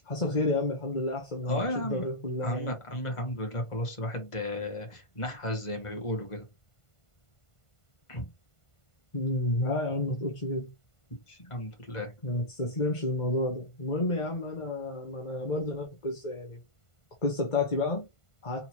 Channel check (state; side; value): late; right; 1.5 ms